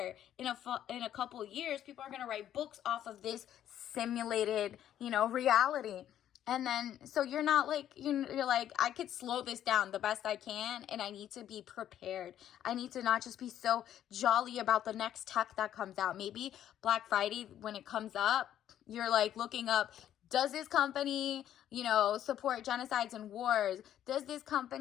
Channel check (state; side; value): quieter; right; 11.1 dB